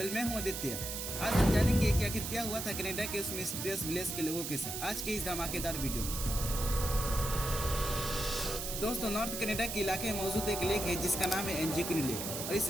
मैं हूँ आदित्य। आज हम जानेंगे कि आखिर क्या हुआ था कनाडा के उस मिस्टीरियस विलेज के लोगों के साथ, आज के इस धमाकेदार वीडियो में। दोस्तों, नॉर्थ कनाडा के इलाके में मौजूद एक लेक है जिसका नाम है एंजिकनी लेक, और इस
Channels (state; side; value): noise; right; hiss, 5 dB below the sound